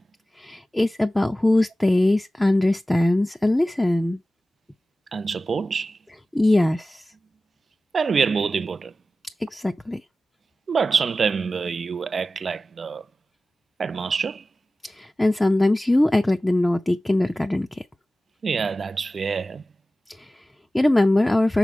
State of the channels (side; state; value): both; normal; correlation 0.95